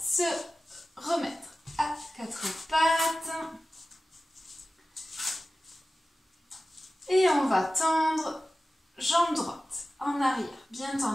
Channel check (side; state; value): both; normal; correlation 0.95